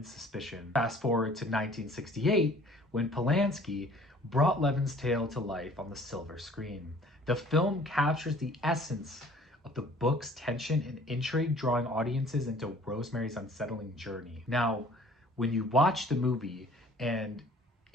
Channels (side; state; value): both; normal; correlation 0.52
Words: suspicion. Fast forward to 1968, when Polanski brought Levin's tale to life on the silver screen. The film captures the essence of the book's tension and intrigue, drawing audiences into Rosemary's unsettling journey. Now, when you watch the movie, and